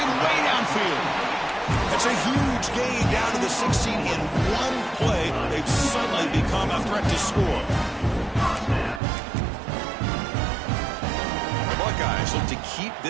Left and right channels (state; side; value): drops out; left; at 9.0 s